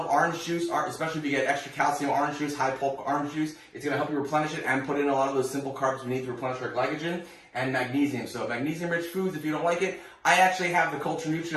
orange juice, especially if you get extra calcium orange juice, high pulp orange juice. It's going to help you replenish it and put in a lot of those simple carbs we need to replenish our glycogen, and magnesium. So magnesium-rich foods, if you don't like it, I actually have the Culture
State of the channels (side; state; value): both; identical; correlation 1.00